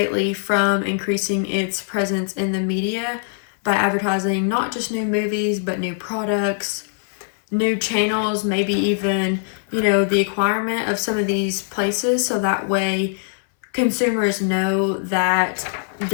from increasing its presence in the media by advertising not just new movies, but new products, new channels, maybe even, the acquirement of some of these places, so that way consumers know that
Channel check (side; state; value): right; silent; 61 dB below the other